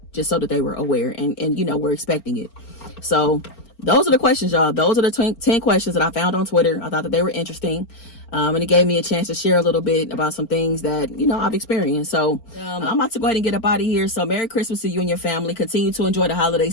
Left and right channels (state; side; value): late; right; 4.4 ms